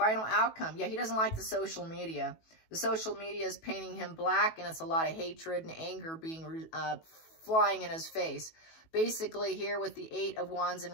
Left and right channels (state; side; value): late; right; 18 ms